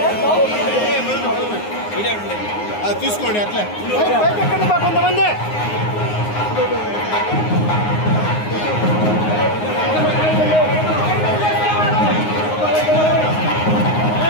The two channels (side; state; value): right; late; 9.6 ms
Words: తీసుకోండి అట్లే కొంతమంది